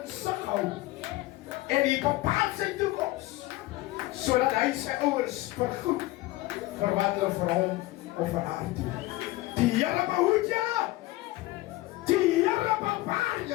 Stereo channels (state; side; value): quieter; right; 18.5 dB